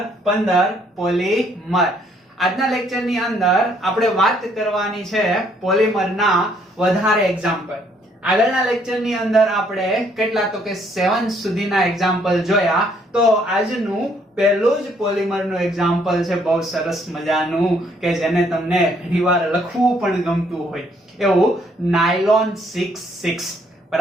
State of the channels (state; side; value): normal; both; correlation 0.67